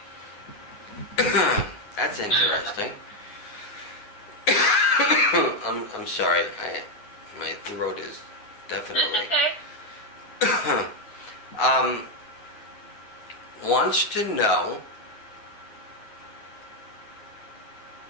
That's interesting. I'm sorry. My throat is definitely. Okay. Wants to know.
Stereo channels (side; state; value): right; late; 9.5 ms